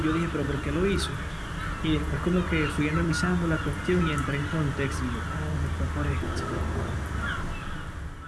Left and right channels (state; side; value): identical; both; correlation 1.00